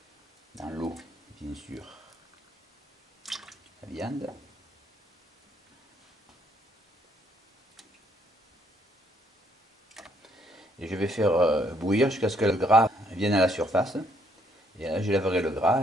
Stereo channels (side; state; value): both; normal; correlation 0.69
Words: dans l'eau, bien sûr, la viande. Et je vais faire bouillir jusqu'à ce que le gras vienne à la surface. Et là, je lèverai le